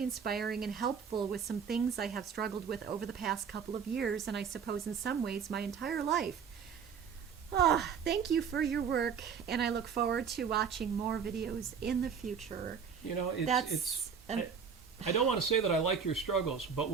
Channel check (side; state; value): left; quieter; 6.7 dB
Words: inspiring and helpful with some things I have struggled with over the past couple of years, and I suppose in some ways my entire life. Thank you for your work, and I look forward to watching more videos in the future." You know, I don't want to say that I like your struggles, but